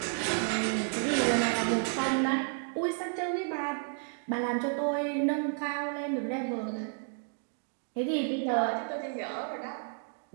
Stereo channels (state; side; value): silent; left; 57 dB below the other